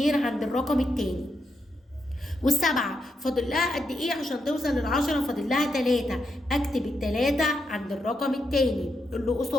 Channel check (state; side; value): normal; both; correlation 0.83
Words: عند الرقم التاني، والسبعة فاضل لها قد ايه عشان توصل لل10؟ فاضل لها 3، اكتب ال3 عند الرقم التاني اللي